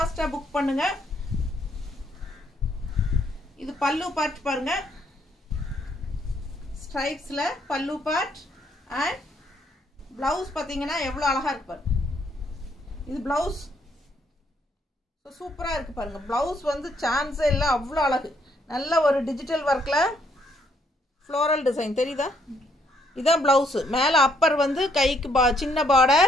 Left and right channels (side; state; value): both; normal; correlation 0.70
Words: புக் பண்ணுங்க. இது பல்லு பார்ட் பாருங்க, ஸ்ட்ரைப்ஸ்ல பல்லு பார்ட் அண்ட் பிளவுஸ் பாத்தீங்கன்னா எவ்வளவு அழகா இருக்கு பாருங்க. இது பிளவுஸ் சூப்பரா இருக்கு பாருங்க. பிளவுஸ் வந்து சான்ஸே இல்லை, அவ்வளோ அழகு. நல்ல ஒரு டிஜிட்டல் ஒர்க்ல ஃப்ளோரல் டிசைன் தெரியுதா? இதான் பிளவுஸ். மேல அப்பர் வந்து கைக்கு சின்ன